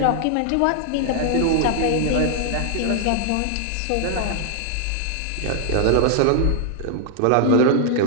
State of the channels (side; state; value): both; different; correlation 0.00